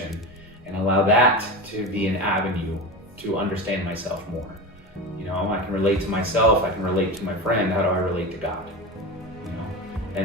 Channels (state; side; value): normal; both; correlation 0.25